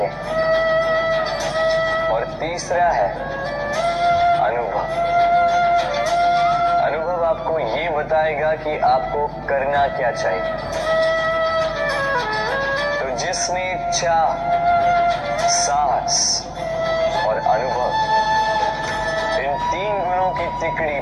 हैं। और तीसरा है अनुभव। अनुभव आपको ये बताएगा कि आपको करना क्या चाहिए। तो जिसने चाह, साहस और अनुभव, इन 3 गुणों की तिकड़ी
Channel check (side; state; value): both; identical; correlation 1.00